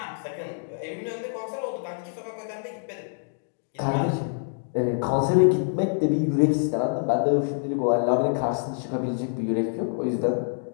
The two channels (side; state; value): right; silent; digital silence